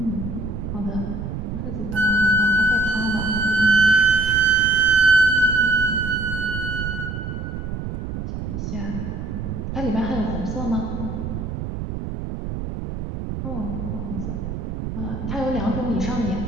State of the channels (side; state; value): right; noise; rumble, 5 dB below the sound